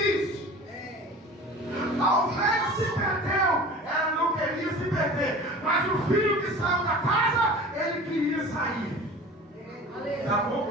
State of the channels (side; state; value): both; normal; correlation 0.39